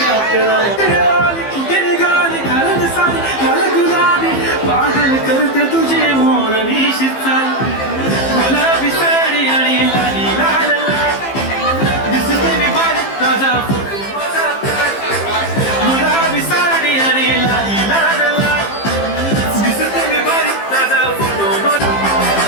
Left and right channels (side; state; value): right; late; 15 ms